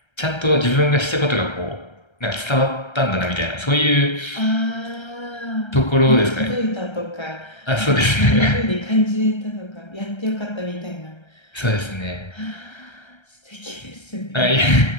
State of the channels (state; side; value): late; right; 1.3 ms